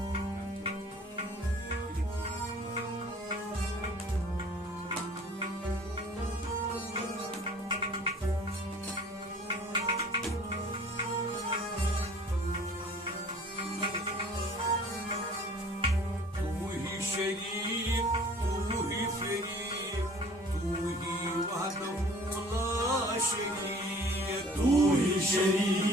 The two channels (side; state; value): both; normal; correlation 0.50